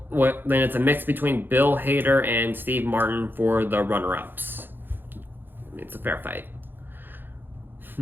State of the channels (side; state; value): left; late; 0.097 ms